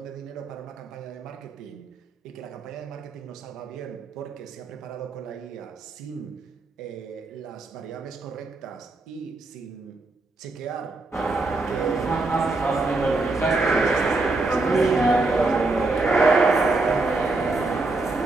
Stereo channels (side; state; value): left; quieter; 3.3 dB